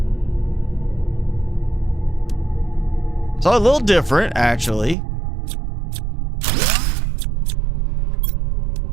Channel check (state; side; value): drops out; left; at 5.0 s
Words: so a little different, actually.